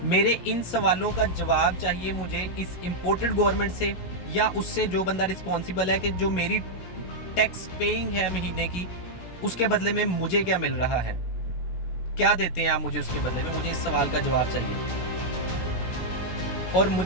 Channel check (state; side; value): late; right; 17 ms